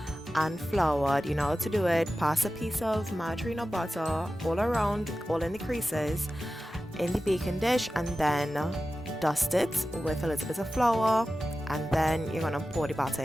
and floured. You know how to do it. Pass a piece of margarine or butter all around, all in the creases in the baking dish, and then dust it with a little bit of flour, and then you're gonna pour the batter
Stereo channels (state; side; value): normal; both; correlation 0.94